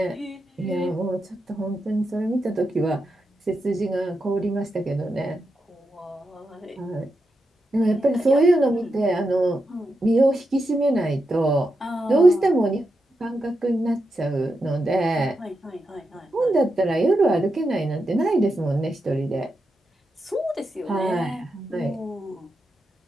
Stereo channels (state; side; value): normal; both; correlation 0.86